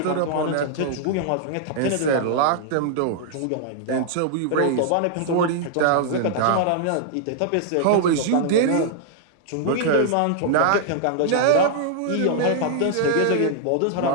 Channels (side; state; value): both; different; correlation -0.01